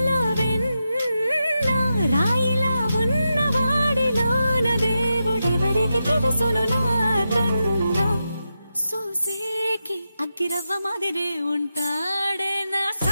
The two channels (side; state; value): both; inverted; correlation -0.89